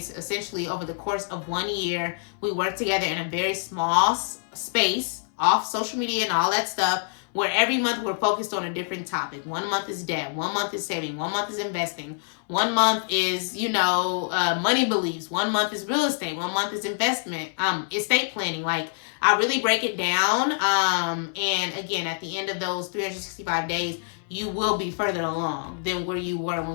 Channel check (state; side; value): silent; right; 61 dB below the other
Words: essentially over the course of 1 year, we work together in a very small space, off social media and all that stuff, where every month we're focused on a different topic. 1 month is debt. 1 month is saving. 1 month is investing. 1 month is, money beliefs. 1 month is real estate. 1 month is investment, estate planning. Like, I really break it down. And again, at the end of those 365 days, you will be further along than where you were